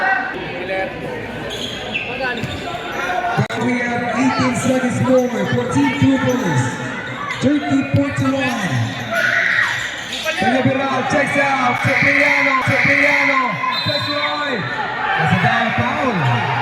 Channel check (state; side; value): identical; both; correlation 1.00